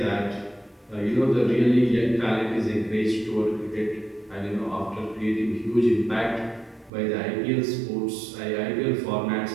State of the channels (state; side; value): drops out; left; at 6.9 s